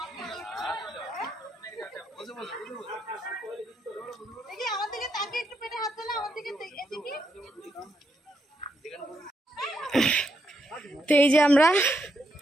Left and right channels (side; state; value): both; normal; correlation 0.80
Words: তো এই যে আমরা